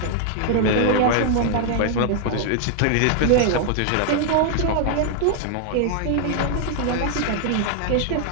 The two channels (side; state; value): both; different; correlation 0.00